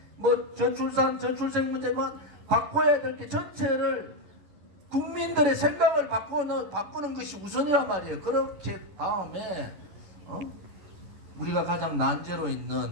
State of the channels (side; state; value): left; late; 10 ms